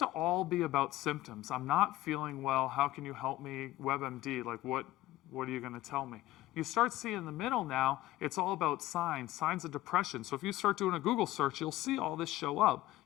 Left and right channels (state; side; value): quieter; right; 16.1 dB